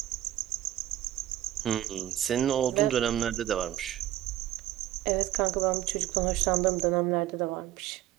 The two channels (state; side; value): quieter; left; 13.3 dB